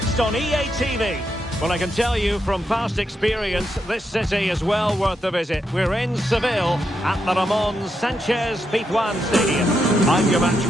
on EA TV. Well, I can tell you from past experience, this city is well worth a visit. We're in Seville at the Ramon Sanchez Pizjuan Stadium. I'm your match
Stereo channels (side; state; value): both; normal; correlation 0.82